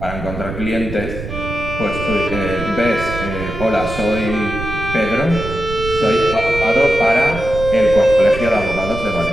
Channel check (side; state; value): right; noise; rumble, 9 dB below the sound